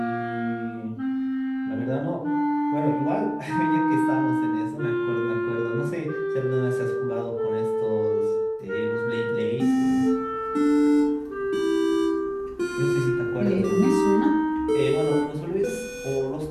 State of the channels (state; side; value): identical; both; correlation 1.00